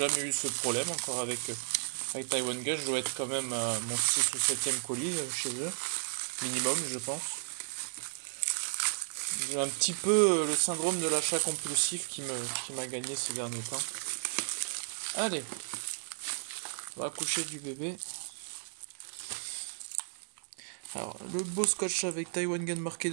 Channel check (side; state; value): left; silent; digital silence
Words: eu ce problème encore avec Taiwan Gun. Je dois être quand même à mon 6 ou 7e colis chez eux, minimum je pense. J'ai un petit peu le syndrome de l'achat compulsif qui m'a gagné ces derniers temps. Allez, on va coucher du bébé. Alors, le beau scotch avec Taiwan Gun marqué